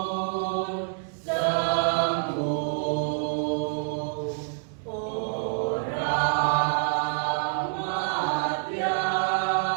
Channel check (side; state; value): left; silent; digital silence